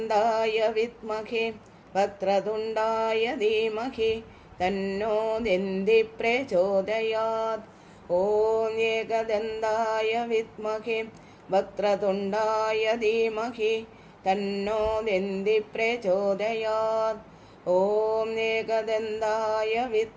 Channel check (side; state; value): both; identical; correlation 1.00